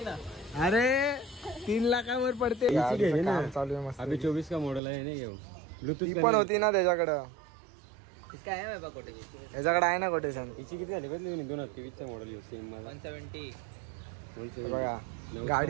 ना. अरे 3 लाखावर पडते. चालू आहे मस्त. अभी 24 का मॉडल आहे ना. घेऊ ब्लूटूथ पण होती ना त्याच्याकडं. काय आहे बाबा कोटेशन याच्याकडे आहे ना कोटेशन. हिची किती झाली बदली 2023 चा मॉडेल सेम 170. बघा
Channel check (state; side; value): drops out; left; at 4.8 s